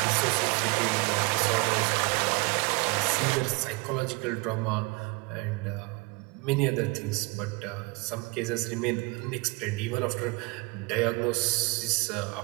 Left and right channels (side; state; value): left; quieter; 27.5 dB